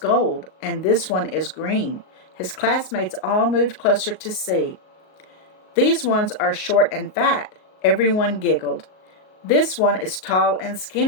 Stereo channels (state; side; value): late; right; 38 ms